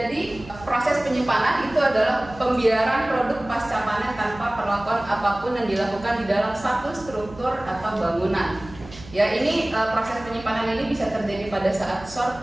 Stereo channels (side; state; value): right; noise; hum, 18 dB below the sound